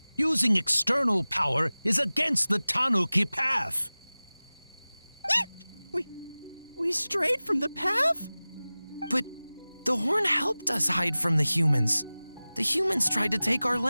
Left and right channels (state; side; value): inverted; both; correlation -0.98